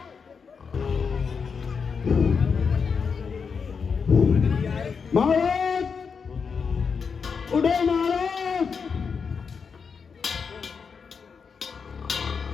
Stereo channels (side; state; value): right; quieter; 5.8 dB